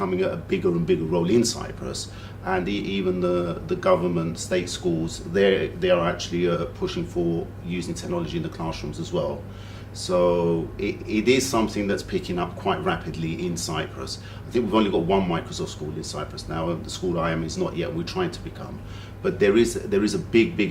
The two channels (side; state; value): both; identical; correlation 1.00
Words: a bigger and bigger role in Cyprus, and even the government, state schools, they are actually pushing for using technology in the classrooms as well. So it is something that's picking up quite rapidly in Cyprus. I think we've only got one Microsoft school in Cyprus now. The school I am is not yet. We're trying to become. But there is a